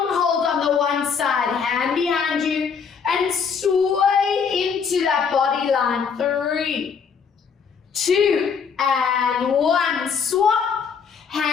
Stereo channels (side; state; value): right; quieter; 6.3 dB